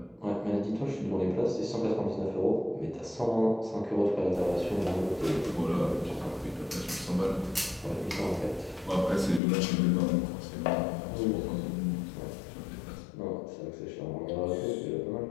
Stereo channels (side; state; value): right; drops out; at 9.4 s